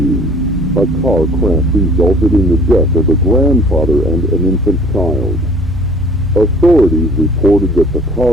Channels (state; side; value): normal; both; correlation 0.51